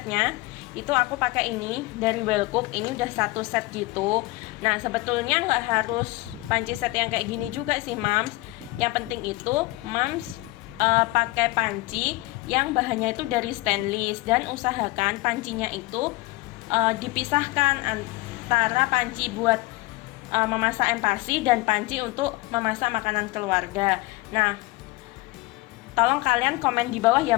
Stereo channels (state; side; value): quieter; right; 21.5 dB